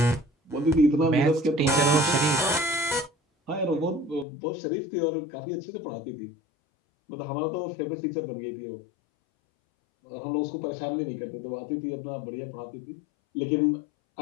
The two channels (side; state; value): right; drops out; at 4.2 s